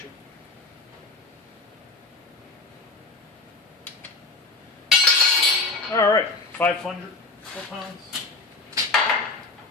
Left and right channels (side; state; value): right; quieter; 3.6 dB